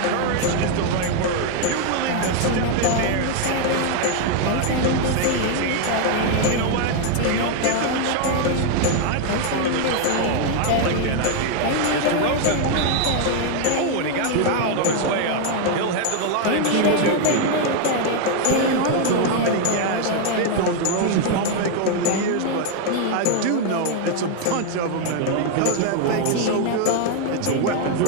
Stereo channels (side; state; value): both; different; correlation 0.00